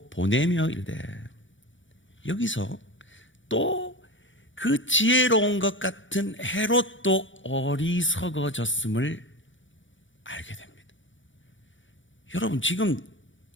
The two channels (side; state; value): right; late; 0.56 ms